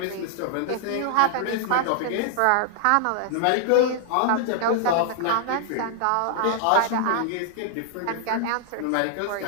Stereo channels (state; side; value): different; both; correlation -0.01